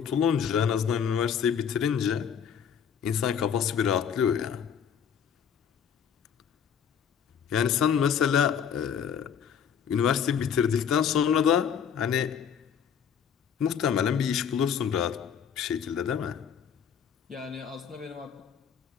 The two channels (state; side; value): quieter; right; 7.8 dB